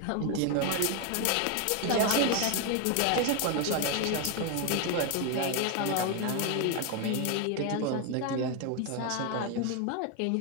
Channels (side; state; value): both; different; correlation 0.01